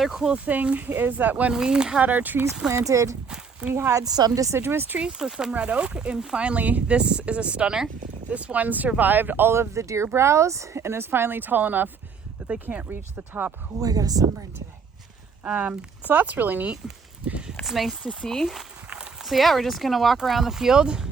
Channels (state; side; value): quieter; left; 5.6 dB